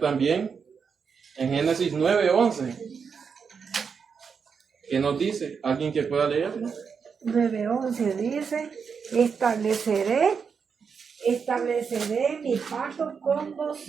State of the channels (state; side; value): quieter; left; 6.1 dB